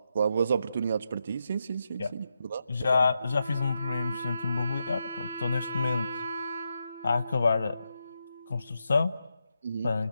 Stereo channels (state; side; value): inverted; both; correlation -0.85